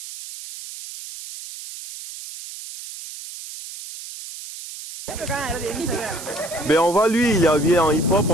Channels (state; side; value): noise; right; hiss, 12 dB below the sound